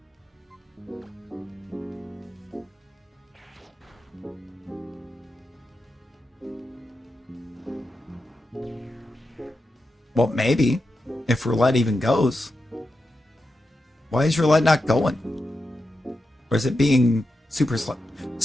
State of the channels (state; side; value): normal; both; correlation 0.88